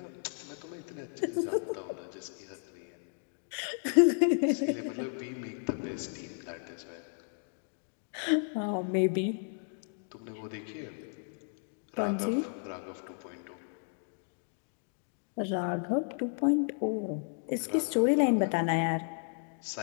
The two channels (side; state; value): right; silent; 55 dB below the other